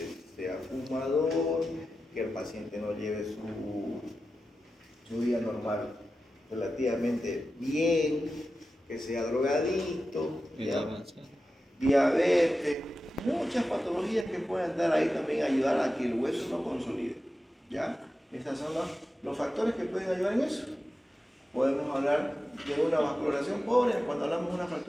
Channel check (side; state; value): both; normal; correlation 0.92